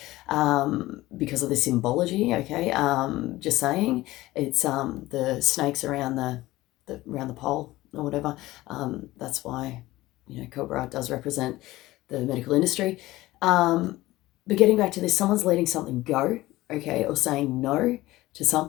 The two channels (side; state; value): right; quieter; 17.8 dB